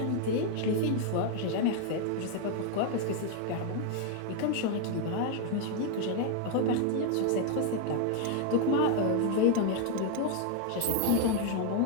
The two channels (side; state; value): both; different; correlation 0.00